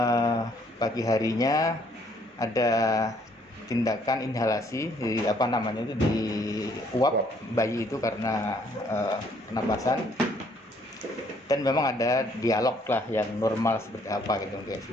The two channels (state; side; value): normal; both; correlation 0.65